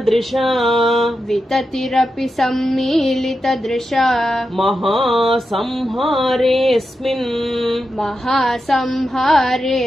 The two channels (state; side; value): normal; both; correlation 0.89